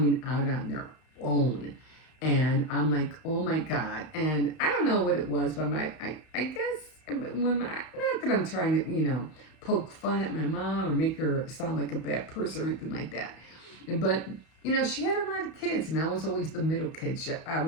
out on their own. And I'm like, oh my God. And I don't know what it was, but I guess not that I'm trying to, poke fun at my mom or make her sound like a bad person or anything like that. But, she had a lot of kids and I was always the middle kid.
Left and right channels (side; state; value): right; late; 32 ms